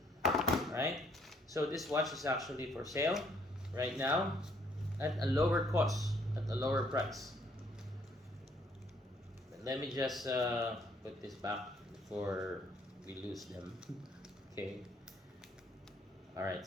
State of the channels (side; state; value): both; normal; correlation 0.66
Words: Alright, so this watch is actually for sale right now at a lower cost, at a lower price. But let me just put this back before we lose them. Okay. Alright,